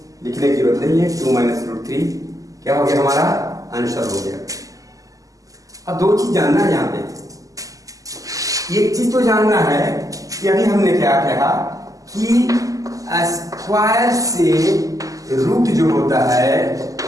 लिखने की जरूरत नहीं है, 2 माइनस √3 क्या हो गया हमारा आंसर हो गया। अब 2 चीज जानना है यहाँ पे। एक चीज तो जानना है कि अभी हमने क्या कहा कि स्क्वायर से रूट जो होता है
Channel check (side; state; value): left; late; 0.17 ms